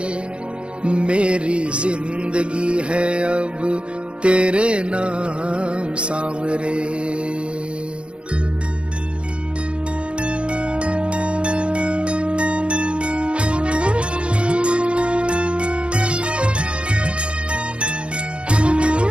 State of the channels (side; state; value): left; late; 0.058 ms